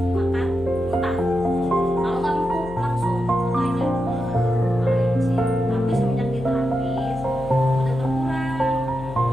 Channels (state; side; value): noise; left; hum, 14 dB below the sound